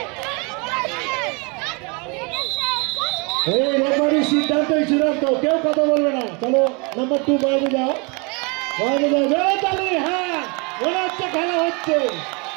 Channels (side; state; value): left; quieter; 31.0 dB